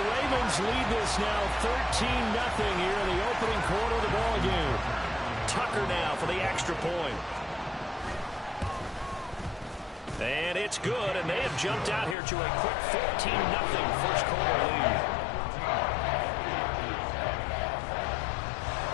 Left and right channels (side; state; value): right; drops out; at 12.2 s